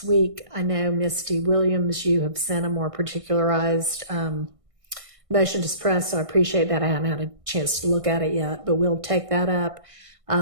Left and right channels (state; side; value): late; left; 1.6 ms